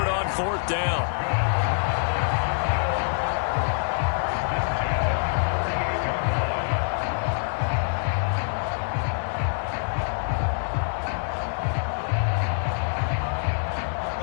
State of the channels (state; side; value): silent; right; digital silence